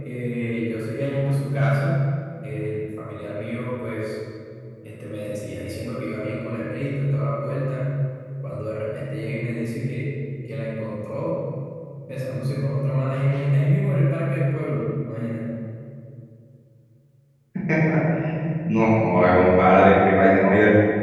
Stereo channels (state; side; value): identical; both; correlation 1.00